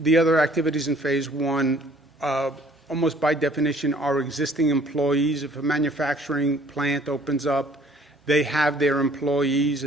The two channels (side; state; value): both; normal; correlation 0.57